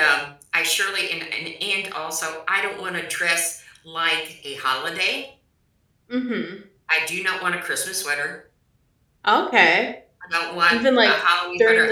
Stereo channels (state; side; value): identical; both; correlation 1.00